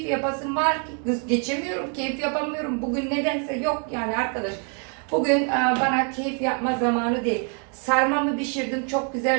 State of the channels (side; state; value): left; quieter; 39.5 dB